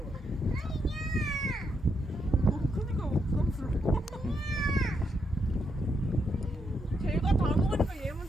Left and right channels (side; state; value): both; normal; correlation 0.79